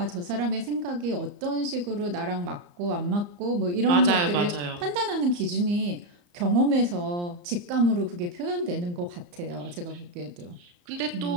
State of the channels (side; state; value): left; late; 34 ms